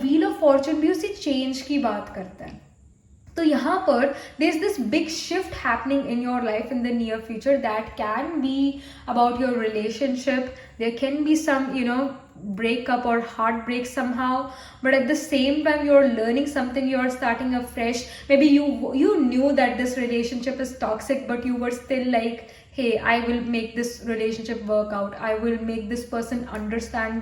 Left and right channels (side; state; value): both; identical; correlation 1.00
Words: ऑफ फॉर्चून भी उसी चेंज की बात करता है। तो यहाँ पर there is this big shift happening in your life in the near future that can be about your relationship, there can be some breakup or heartbreak somehow, but at the same time you're learning something, you're starting afresh. Maybe you knew that this relationship is toxic, but you were still like, hey, I will make this relationship work out, I will make this person